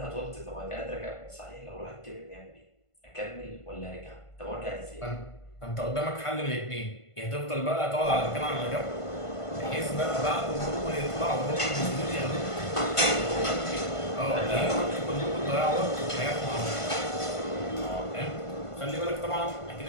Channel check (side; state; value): right; late; 1.5 ms